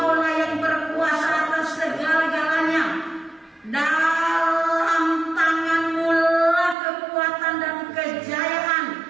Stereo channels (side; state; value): left; drops out; at 6.8 s